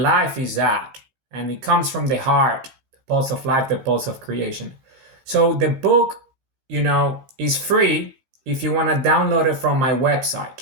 life is that. And it comes from the heart, the pulse of life, the pulse of creation. So the book, is free if you want to download it from my website.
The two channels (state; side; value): late; left; 15 ms